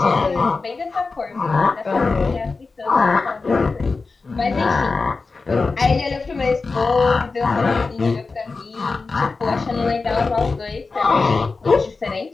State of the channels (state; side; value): quieter; right; 4.1 dB